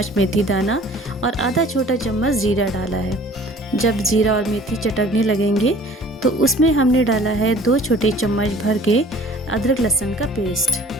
मेथी दाना और आधा छोटा चम्मच जीरा डाला है। जब जीरा और मेथी चटकने लगेंगे तो उसमें हमने डाला है 2 छोटे चम्मच भर के अदरक लहसुन का पेस्ट।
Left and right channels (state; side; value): normal; both; correlation 0.50